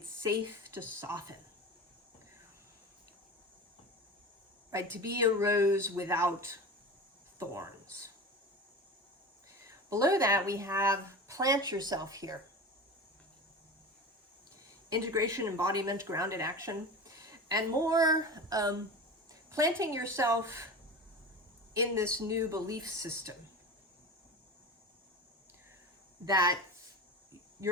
safe to soften. Right, to be a rose without thorns. Below that, we have plant yourself here. Integration, embodiment, grounded action, and more planting yourself in this new belief system that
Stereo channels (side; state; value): both; normal; correlation 0.30